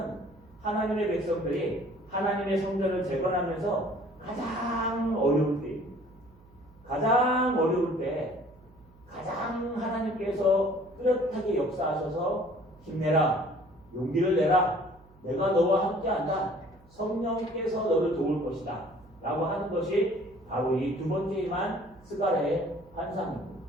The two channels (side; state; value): right; noise; hum, 26 dB below the sound